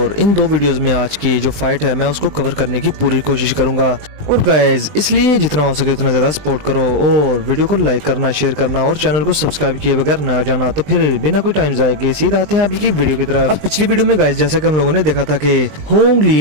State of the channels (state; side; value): late; left; 20 ms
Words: इन दो वीडियोस में आज की जो फाइट है मैं उसको कवर करने की पूरी कोशिश करूंगा। और गाइस इसलिए जितना हो सके उतना ज़्यादा सपोर्ट करो और वीडियो को लाइक करना, शेयर करना और चैनल को सब्सक्राइब किए बगैर ना जाना। तो फिर बिना कोई टाइम जाए के सीधा आते हैं अभी की वीडियो की तरफ। अब पिछली वीडियो में गाइस जैसा कि हम लोगों ने देखा था कि होंग